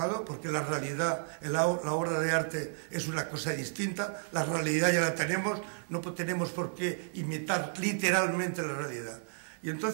porque la realidad, la obra de arte es una cosa distinta, la realidad ya la tenemos, no tenemos por qué imitar literalmente la realidad. Y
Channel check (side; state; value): left; silent; digital silence